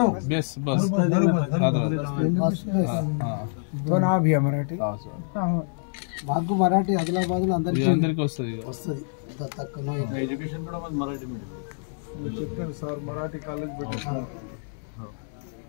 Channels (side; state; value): right; silent; digital silence